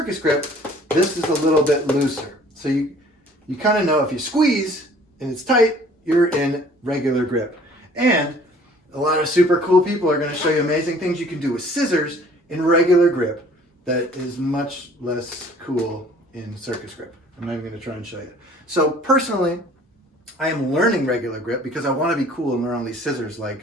Grip, this is a little bit looser. So you kind of know if you squeeze and it's tight, you're in regular grip. And a lot of super cool people are going to show you amazing things you can do with scissors in regular grip that is much less cool in Circus Grip. I'm not even going to try and show you. So personally, I am learning regular grip because I want to be cool and learn all these scissors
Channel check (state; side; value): normal; both; correlation 0.53